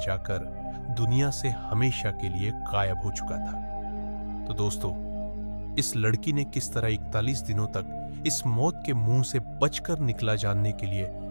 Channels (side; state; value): both; inverted; correlation -1.00